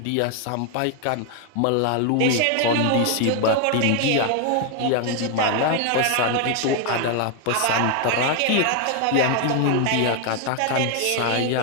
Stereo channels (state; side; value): different; both; correlation 0.01